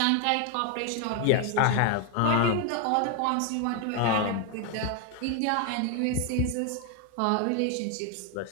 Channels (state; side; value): different; both; correlation 0.01